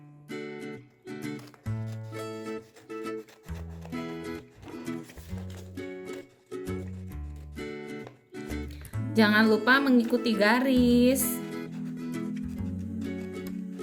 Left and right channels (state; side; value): identical; both; correlation 1.00